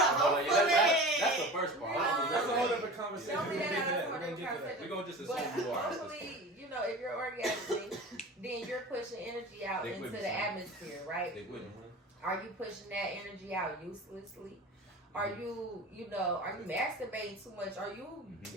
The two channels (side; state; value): both; normal; correlation 0.35